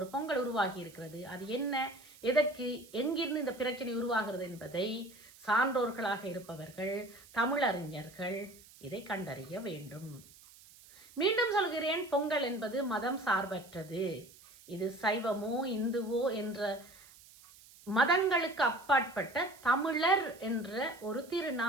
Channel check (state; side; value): noise; right; hiss, 22 dB below the sound